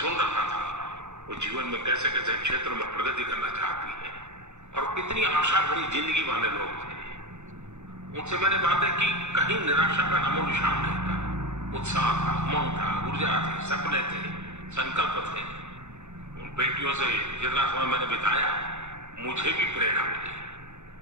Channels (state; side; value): late; left; 0.83 ms